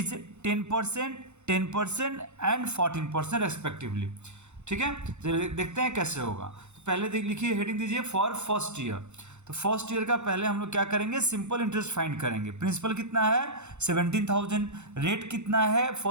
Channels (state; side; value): late; left; 0.83 ms